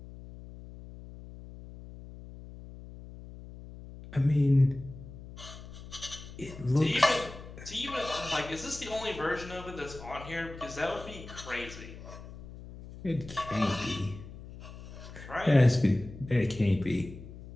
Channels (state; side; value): noise; left; hum, 14 dB below the sound